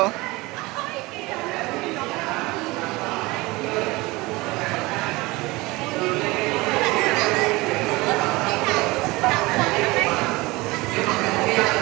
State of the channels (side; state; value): left; quieter; 22.1 dB